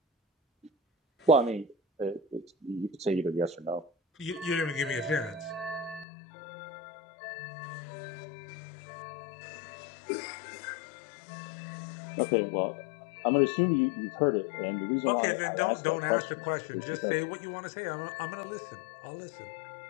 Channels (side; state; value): right; drops out; at 6.1 s